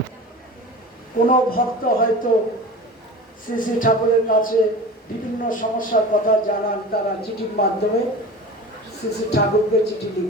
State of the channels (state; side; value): normal; both; correlation 0.35